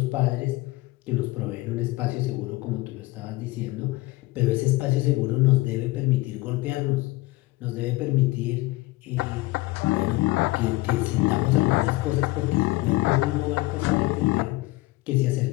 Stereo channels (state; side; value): quieter; right; 20.2 dB